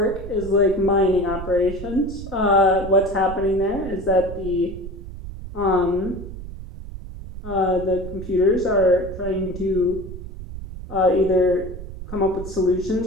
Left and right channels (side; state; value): right; noise; rumble, 11 dB below the sound